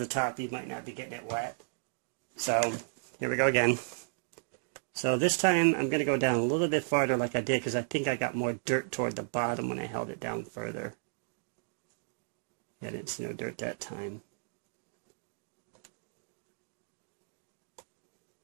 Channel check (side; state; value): left; silent; digital silence